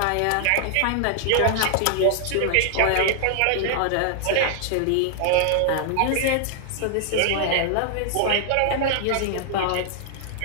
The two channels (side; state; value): both; different; correlation 0.00